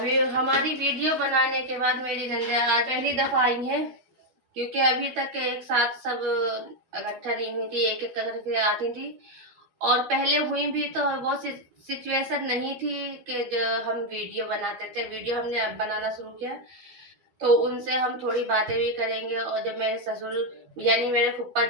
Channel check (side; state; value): left; late; 12 ms